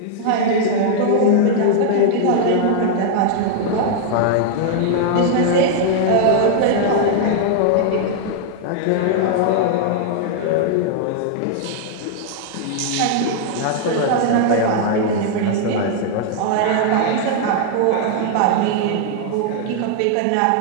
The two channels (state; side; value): different; both; correlation 0.00